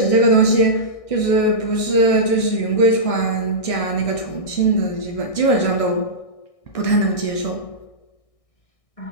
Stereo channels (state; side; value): late; right; 1.6 ms